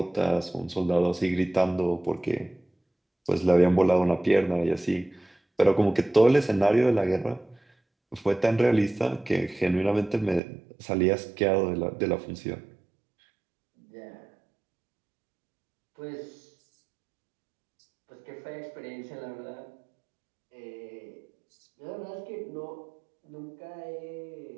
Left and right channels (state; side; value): drops out; left; at 10.4 s